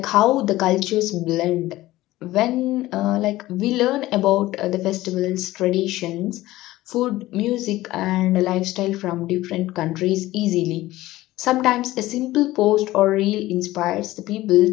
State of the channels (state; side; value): quieter; right; 16.9 dB